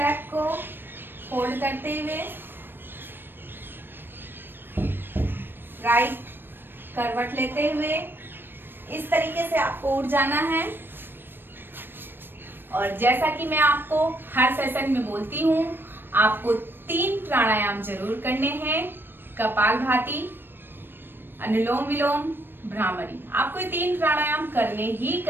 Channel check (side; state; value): left; late; 0.097 ms